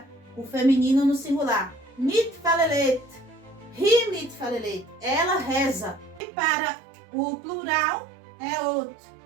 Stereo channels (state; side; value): drops out; left; at 6.2 s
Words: o feminino no singular. Mitfalelet, hi mitfalelet. Ela reza. E para o plural é ot.